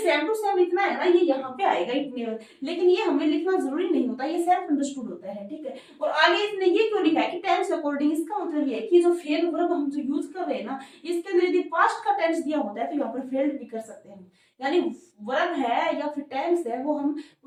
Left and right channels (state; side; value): identical; both; correlation 1.00